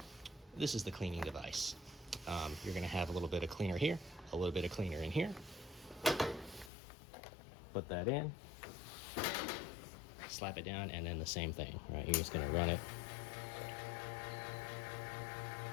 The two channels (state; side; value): drops out; right; at 6.7 s